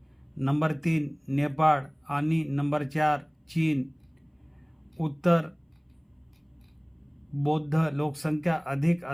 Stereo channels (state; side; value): identical; both; correlation 1.00